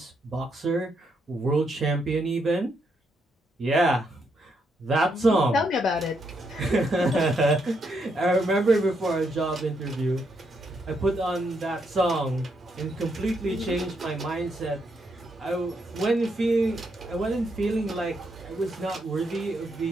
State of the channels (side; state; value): both; normal; correlation 0.78